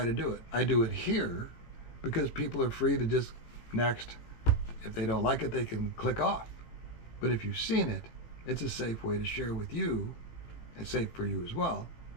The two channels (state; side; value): late; right; 17 ms